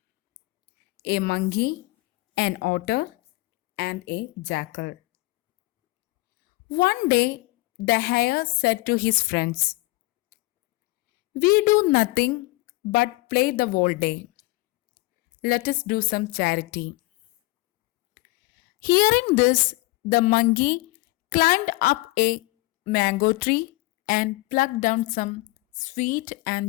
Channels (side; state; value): right; quieter; 21.5 dB